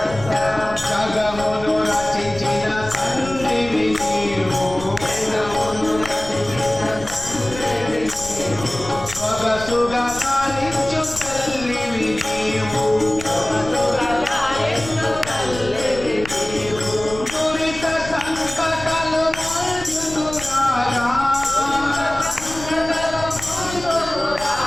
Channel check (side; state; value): left; noise; rumble, 13 dB below the sound